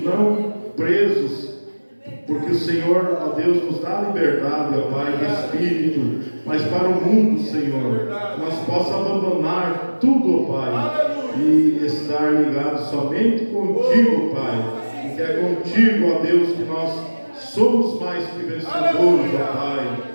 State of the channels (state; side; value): inverted; both; correlation -1.00